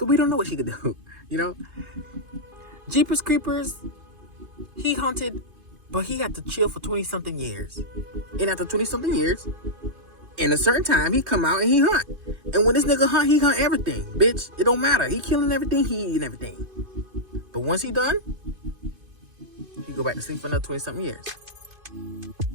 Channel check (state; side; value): late; left; 2.5 ms